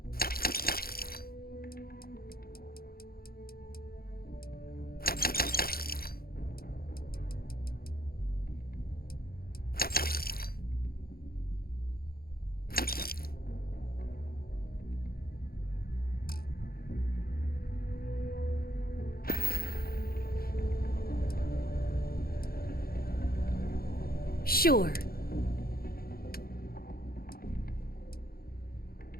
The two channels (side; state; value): right; late; 0.44 ms